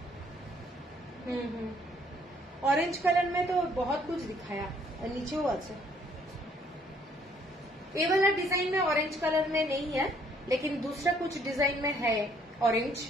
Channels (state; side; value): normal; both; correlation 0.64